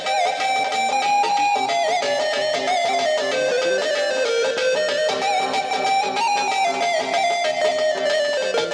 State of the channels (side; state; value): both; identical; correlation 1.00